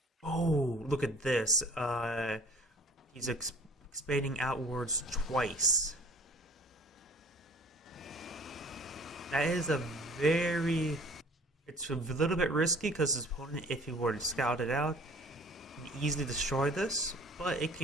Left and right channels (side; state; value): both; normal; correlation 0.49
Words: Oh, look at this. He's expanding outwards twice. That is it's a little bit risky because his opponent, if he were to scout it out, can easily destroy this, but it